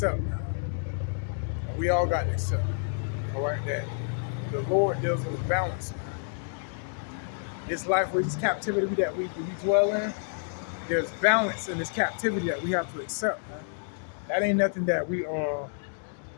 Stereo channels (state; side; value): silent; right; digital silence